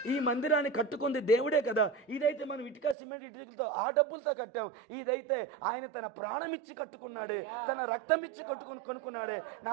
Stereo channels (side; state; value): left; drops out; at 3.0 s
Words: ఈ మందిరాన్ని కట్టుకుంది దేవుడే కదా. ఇదైతే మనం ఇటుక సిమెంట్ ఇటుకలతో ఆ డబ్బులతో కట్టాం. ఇదైతే ఆయన తన ప్రాణం ఇచ్చి కట్టుకున్నాడే, తన రక్తం ఇచ్చి కొనుక్కున్నాడే,